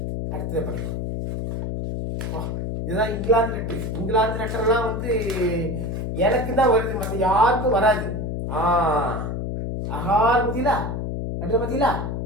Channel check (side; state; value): left; noise; hum, 3 dB below the sound